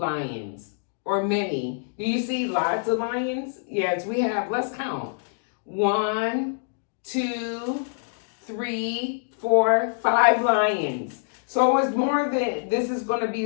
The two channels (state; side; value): silent; right; digital silence